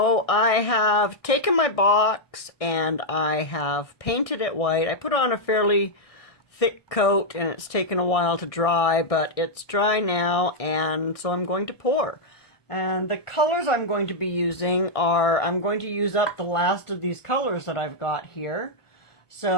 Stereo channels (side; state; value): right; late; 1.6 ms